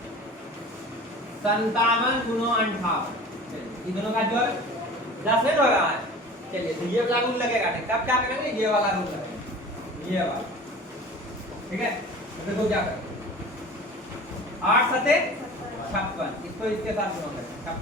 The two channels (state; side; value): normal; both; correlation 0.40